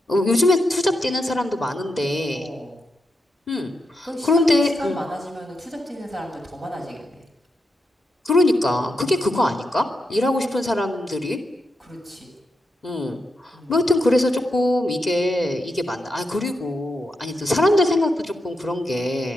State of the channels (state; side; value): normal; both; correlation 0.85